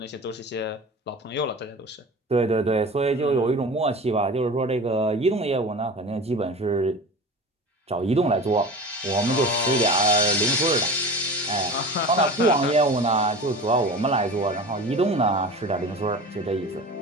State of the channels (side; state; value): both; normal; correlation 0.35